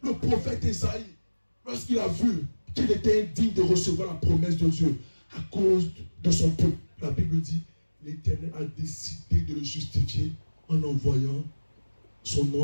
Le prophète Esaïe, lorsqu'il a vu qu'il était indigne de recevoir la promesse de Dieu à cause de son peuple, la Bible dit, l'Éternel a décidé de le justifier en envoyant son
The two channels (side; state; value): both; inverted; correlation -1.00